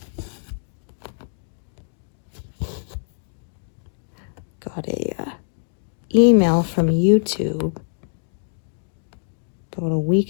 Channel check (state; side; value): silent; right; digital silence